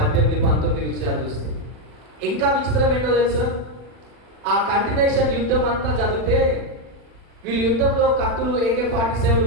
19 విషయాలు చూస్తే ఇంకా విచిత్రం ఏంటో తెలుసా? ఆ కంటిన్యూషన్ యుద్ధం అంతా చదివితే వీళ్ళు యుద్ధంలో కత్తులు, AK-47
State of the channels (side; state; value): left; late; 40 ms